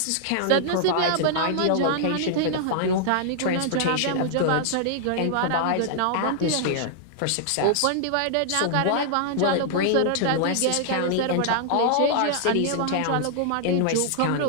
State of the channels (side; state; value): both; different; correlation -0.01